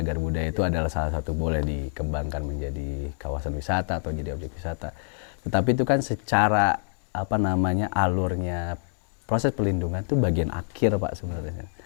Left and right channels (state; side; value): silent; right; digital silence